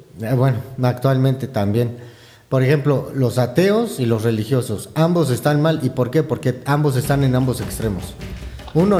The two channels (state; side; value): identical; both; correlation 1.00